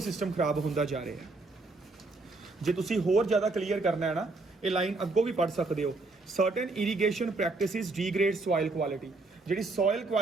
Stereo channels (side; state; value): left; quieter; 3.4 dB